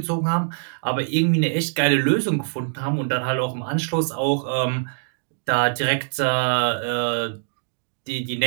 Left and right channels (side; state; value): left; silent; digital silence